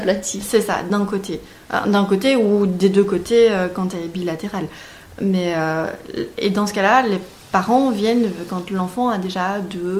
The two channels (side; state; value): both; identical; correlation 1.00